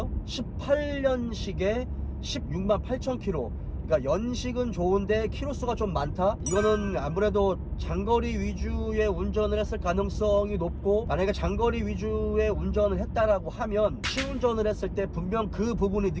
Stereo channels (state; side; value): identical; both; correlation 1.00